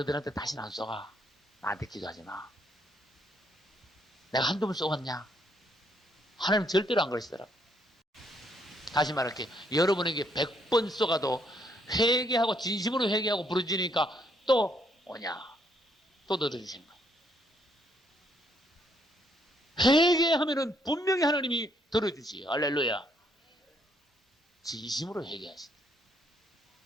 다시는 안 쏘가. 나한테 기도하지 마. 내가 한두 번 쏘았냐? 하나님 절대로 안 그러시더라. 다시 말할게. 여러분에게 100번 쏘가도 회개하고 진심으로 회개하고 부르짖으니까 또 오냐? 또 들어주신 거예요. 회개하면은 분명히 하나님이 들어주시요. 할렐루야. 진심으로 회개하신다.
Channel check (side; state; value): both; normal; correlation 0.71